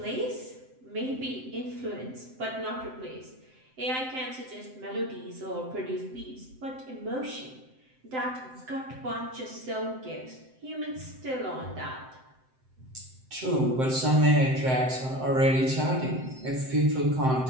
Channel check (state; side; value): late; left; 7.7 ms